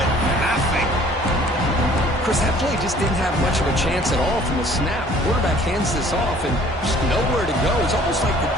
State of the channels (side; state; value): both; normal; correlation 0.54